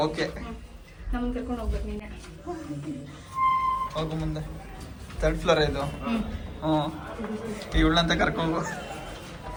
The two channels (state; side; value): identical; both; correlation 1.00